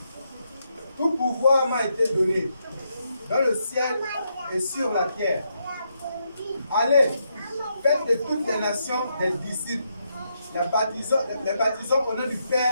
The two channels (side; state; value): both; inverted; correlation -0.80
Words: Tout pouvoir m'a été donné, dans le ciel et sur la terre. Allez, faites de toutes les nations des disciples, les baptisant au nom du